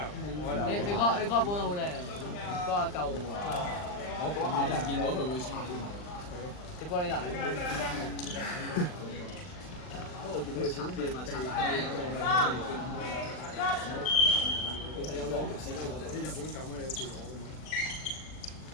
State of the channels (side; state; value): right; late; 39 ms